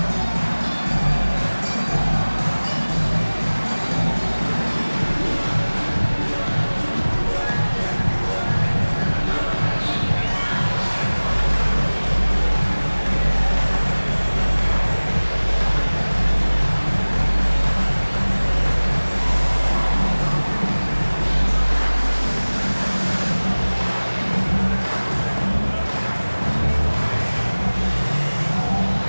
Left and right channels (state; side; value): inverted; both; correlation -1.00